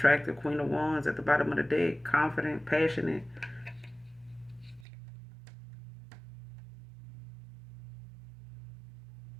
Queen of Wands at the bottom of the deck. Confident, passionate.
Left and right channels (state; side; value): drops out; left; at 4.9 s